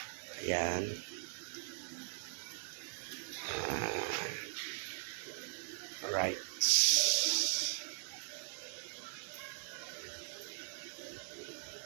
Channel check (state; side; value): silent; left; 51 dB below the other